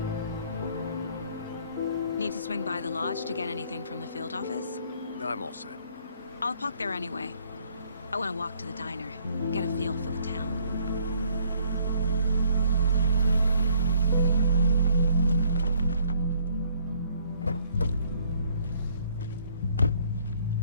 Need to swing by the lodge to get anything from the field office? I'm all set. I'll park there anyway. I want to walk to the diner, get a feel for the town.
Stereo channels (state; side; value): inverted; both; correlation -0.62